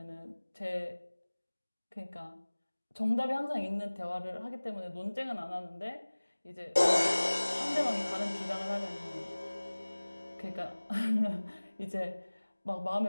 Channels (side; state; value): both; inverted; correlation -1.00